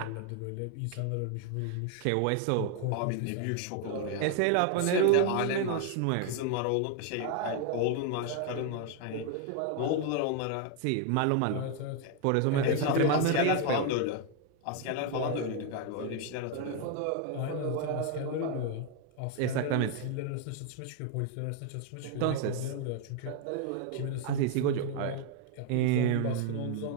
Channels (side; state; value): both; different; correlation 0.00